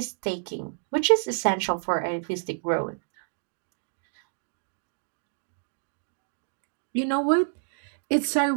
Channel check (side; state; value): left; silent; digital silence